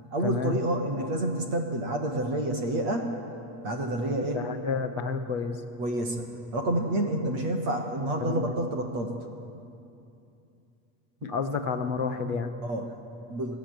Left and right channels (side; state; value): left; late; 8.5 ms